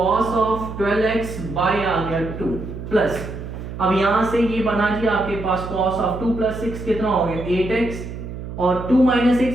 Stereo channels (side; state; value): right; noise; hum, 9 dB below the sound